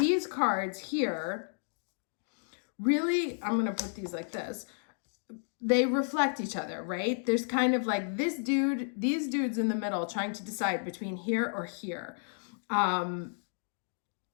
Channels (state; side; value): silent; right; digital silence